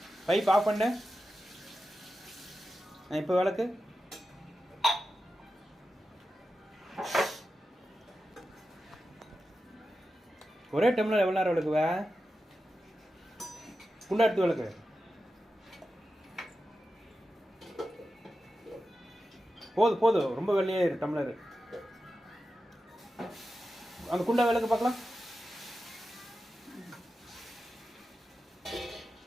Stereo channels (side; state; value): both; normal; correlation 0.91